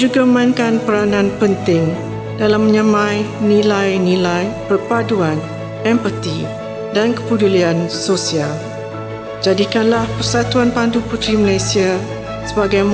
memainkan peranan penting dalam menyamai nilai-nilai perpaduan, empati dan kepedulian sosial. Jadikanlah Persatuan Pandu Puteri Malaysia sebagai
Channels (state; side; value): identical; both; correlation 1.00